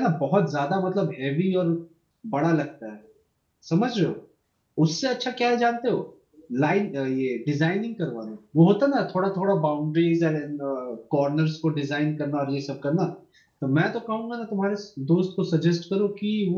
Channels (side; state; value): both; identical; correlation 1.00